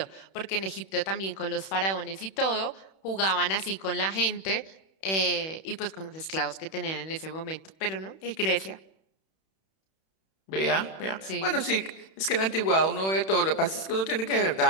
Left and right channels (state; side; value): late; right; 31 ms